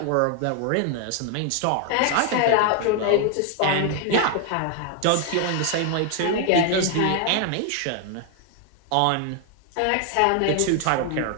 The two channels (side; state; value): both; different; correlation 0.00